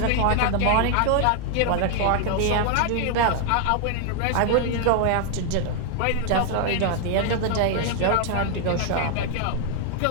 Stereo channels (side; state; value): both; different; correlation 0.00